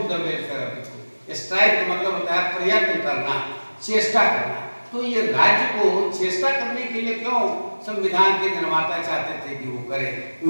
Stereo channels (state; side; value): inverted; both; correlation -1.00